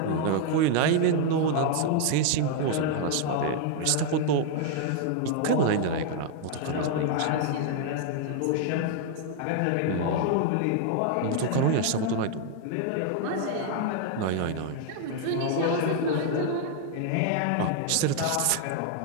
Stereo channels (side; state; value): both; different; correlation 0.00